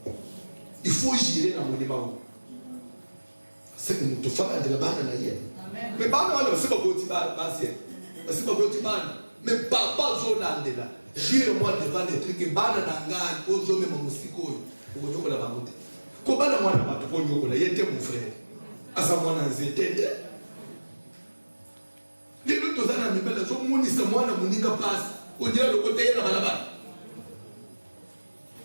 Il faut jurer dans le monument. c'est que nous te faisons de la banane d'ailleurs. Mais banane, c'est pas petit basi. C'est pas petit banane. Mais papa Zolande là. Jure-moi devant les trucs que banane d'angane, aux hommes et mon musico. Pour que nous la banane. Comment la moine va te prendre là? Il était mon frère. À sa moine en zété. Les autres gens n'ont pas la zone mouni sa moine mouni passe. On dirait le côté de la balabane.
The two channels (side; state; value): both; inverted; correlation -1.00